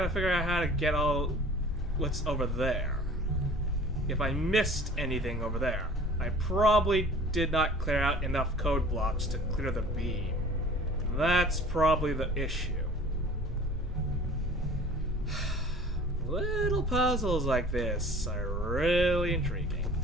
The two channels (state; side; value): normal; both; correlation 0.46